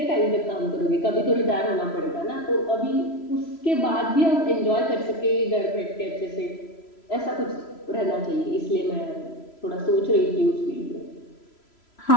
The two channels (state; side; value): late; right; 3.0 ms